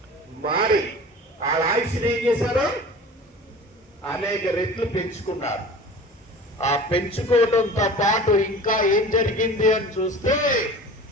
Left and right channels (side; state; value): both; normal; correlation 0.39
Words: మారి వాళ్ళ ఆయుష్ని ఏం చేశారు? అనేక రెట్లు పెంచుకున్నారు. ఆ పెంచుకోవడంతో పాటు ఇంకా ఏం జరిగింది అని చూస్తే